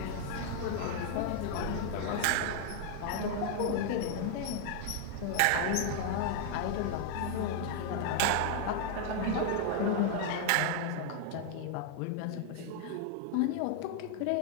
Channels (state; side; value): different; both; correlation 0.00